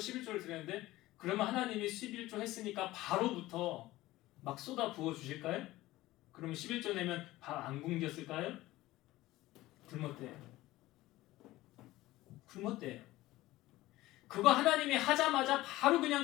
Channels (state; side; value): quieter; right; 17.4 dB